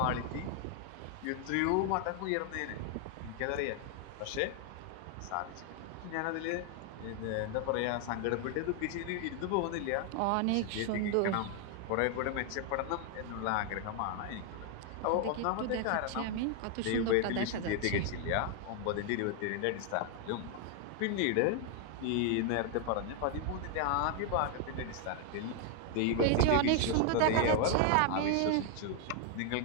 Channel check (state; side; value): different; both; correlation 0.00